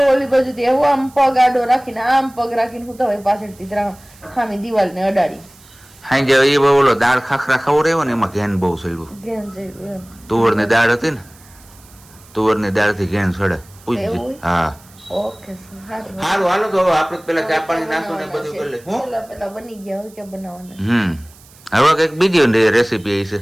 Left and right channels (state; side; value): noise; right; hiss, 25 dB below the sound